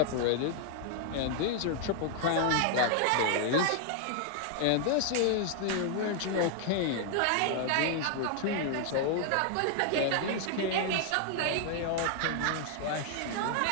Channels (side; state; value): both; different; correlation 0.00